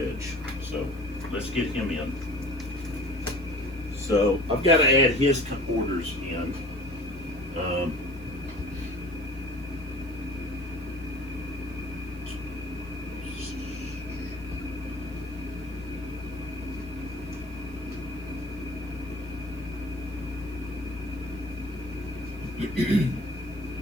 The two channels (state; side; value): noise; right; hiss, 26 dB below the sound